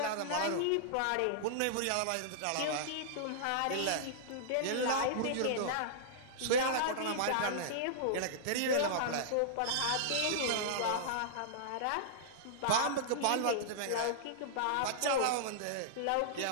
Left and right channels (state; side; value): different; both; correlation -0.02